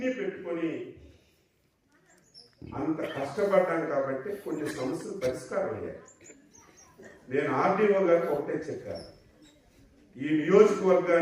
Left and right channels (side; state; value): both; identical; correlation 1.00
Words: పెట్టుకొని అంత కష్టపడ్డాం కాబట్టి కొన్ని సమస్యలు పరిష్కారం అయ్యాయి. నేను ఆర్టీఓ గారికి ఒకటే చెప్పాను, ఈ